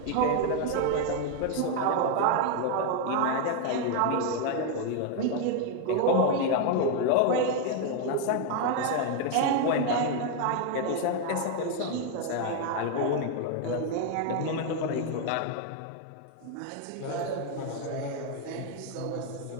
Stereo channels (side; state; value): both; different; correlation 0.01